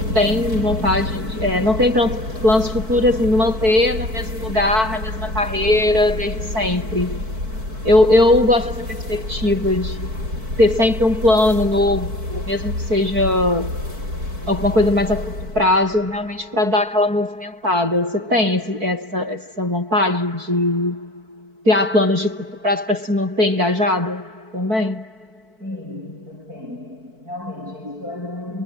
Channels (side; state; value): left; late; 4.6 ms